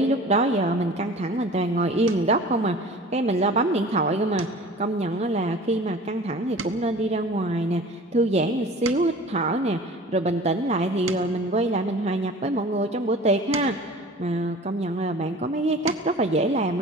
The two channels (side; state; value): both; normal; correlation 0.42